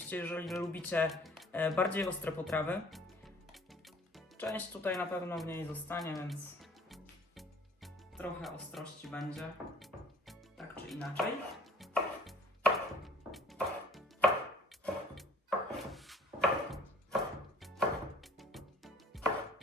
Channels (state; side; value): normal; both; correlation 0.54